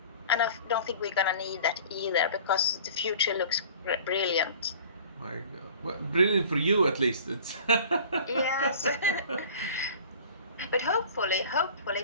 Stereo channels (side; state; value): both; inverted; correlation -0.45